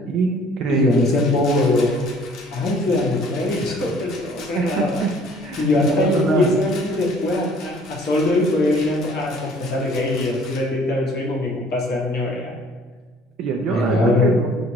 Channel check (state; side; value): normal; both; correlation 0.55